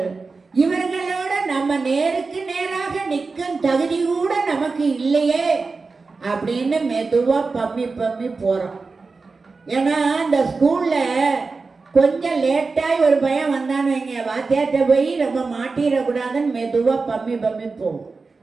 இவர்களோட நம்ம நேருக்கு நேராக நிற்கும் தகுதி கூட நமக்கு இல்லையே அப்படின்னு மெதுவா பம்மி பம்மி போறோம். ஏன்னா இந்த ஸ்கூல்ல கொஞ்சம் லேட்டாய் ஒரு பையன் வந்தான்னு வைங்க, வாத்தியார்கிட்ட போய் நம்ம மாட்டிடக்கூடாதுன்னு மெதுவா பம்மி பம்மி போகும்.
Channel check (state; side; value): quieter; left; 4.2 dB